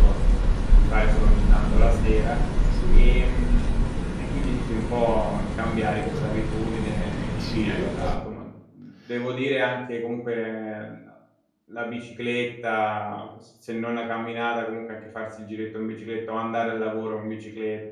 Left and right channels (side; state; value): both; identical; correlation 1.00